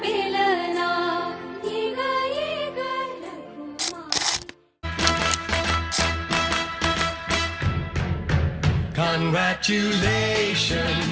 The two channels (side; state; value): both; identical; correlation 1.00